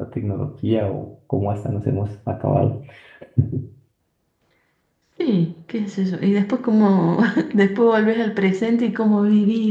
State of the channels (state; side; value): identical; both; correlation 1.00